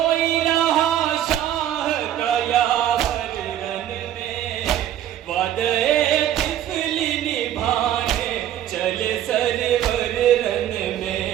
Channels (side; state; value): left; quieter; 11.4 dB